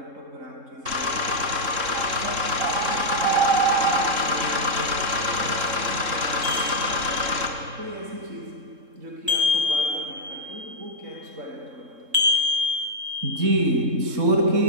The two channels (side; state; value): left; late; 3.7 ms